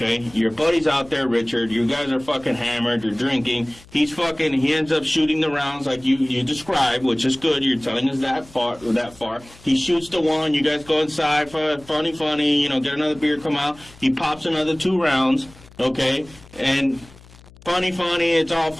Your buddy's out there, Richard. You guys are fucking hammered. You're drinking. He ends up shooting the rounds like you described, which is good. You're telling us that far. He shoots the one. You guys go inside for funny, get another beer, come out. He pops another 2 rounds, okay? And funny, it's all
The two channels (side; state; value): left; noise; hum, 23 dB below the sound